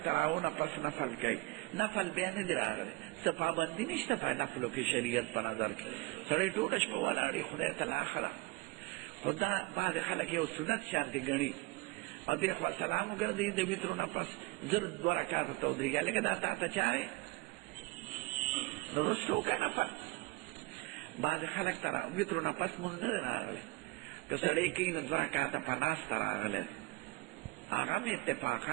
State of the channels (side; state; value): left; quieter; 23.0 dB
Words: تراونه پس نفل کوي، نفل بیا نه دی راغلی، څه پابندي نشته په نفلو کې شریعت په نظر کې. سړی ټوله شپه ولاړي خدای ته لاښه ده، خو دا بعضې خلک یو سنت شانتې ګڼي او دې خوا سلام وګرځوي د وترو نه پس زر 2 رکعاته ته ودرېږي. لکه دا تا ته چارې نو اوس وکړه نفل. بعضې خلک ته وترو نه پس مونځ نه دی راغلی، که سړی کوي نو 2 رکعاته په ناسته راغلی، هغه هم